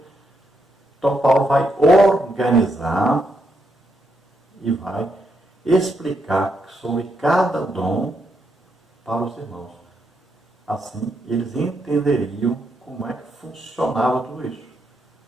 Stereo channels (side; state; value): both; normal; correlation 0.79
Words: Então Paulo vai organizar e vai explicar sobre cada dom para os irmãos. Assim, eles entenderiam como é que funcionava tudo isso.